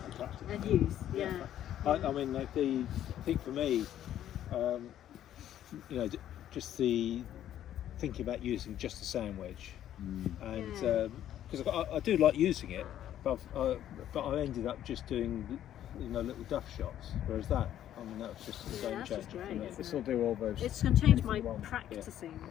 and use. Yeah. I mean, like I think for me, you know, just the thinking about using just a sand wedge, and because I do like using it, but I ended up just doing, you know, little duff shots. Whereas that, I mean, that was just a game that's changer just for great, me. isn't This will do all those. It's going to change my anything you want. practicing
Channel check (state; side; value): quieter; right; 11.4 dB